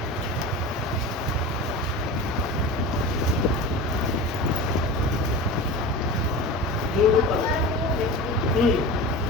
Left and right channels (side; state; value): both; normal; correlation 0.31